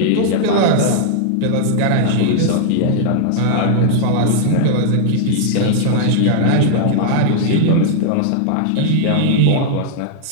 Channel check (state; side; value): different; both; correlation -0.01